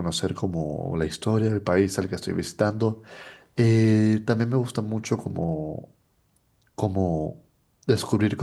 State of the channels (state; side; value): identical; both; correlation 1.00